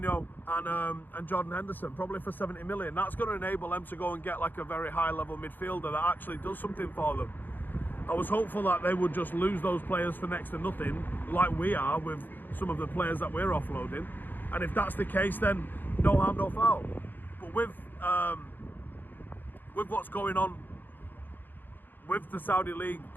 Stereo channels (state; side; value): late; right; 0.090 ms